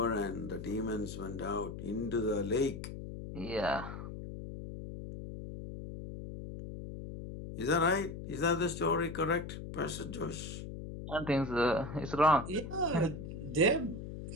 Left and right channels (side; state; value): left; noise; hum, 9 dB below the sound